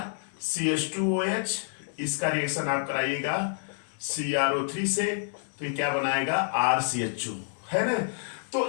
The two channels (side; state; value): right; silent; digital silence